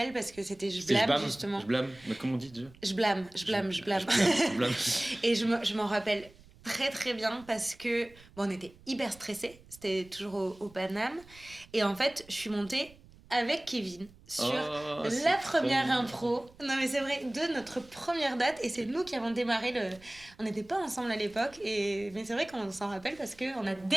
parce que c'était Je blâme, justement. Je blâme, mais comment on dit déjà? Je blâme. Et je m'en rappelle très très bien parce que bon, on était hyper stressés, c'était toujours au Paname, et en fait je suis montée avec Kevin sur la première impro, non mais c'est vrai, de notre première date, et c'est nous qui avons démarré on n'était pas ensemble à l'époque, mais c'est vrai qu'on s'en rappelle parce qu'on a démarré.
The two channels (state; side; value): noise; right; rumble, 24 dB below the sound